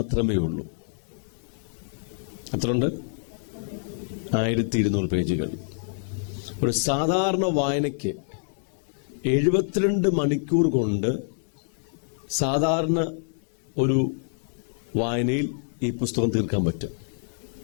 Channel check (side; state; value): right; silent; digital silence